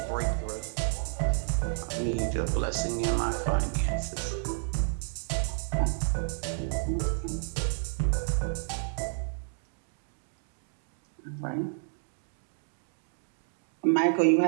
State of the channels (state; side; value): silent; left; digital silence